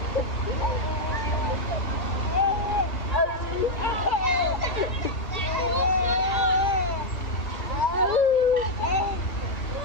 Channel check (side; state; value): right; late; 2.4 ms